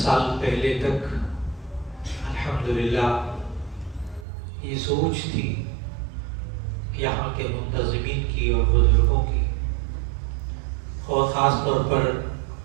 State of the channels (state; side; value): drops out; left; at 4.2 s